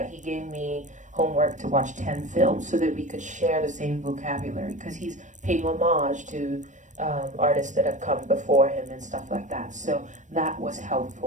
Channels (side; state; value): left; late; 0.35 ms